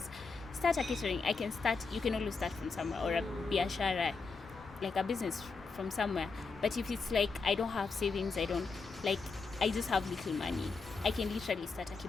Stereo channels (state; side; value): quieter; right; 4.4 dB